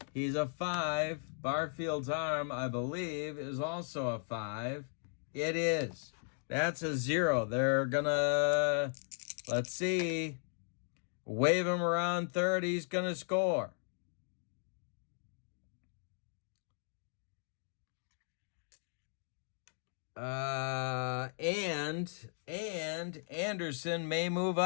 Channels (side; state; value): right; silent; digital silence